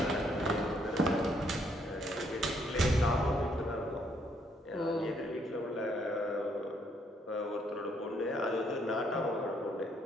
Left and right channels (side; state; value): both; normal; correlation 0.70